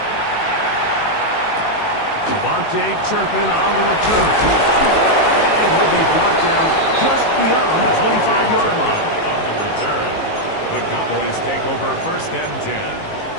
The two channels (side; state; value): right; late; 19 ms